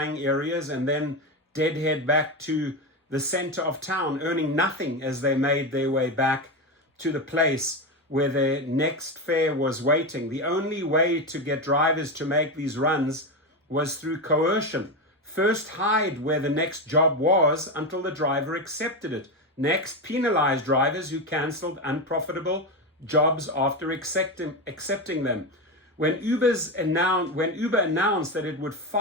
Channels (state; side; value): normal; both; correlation 0.15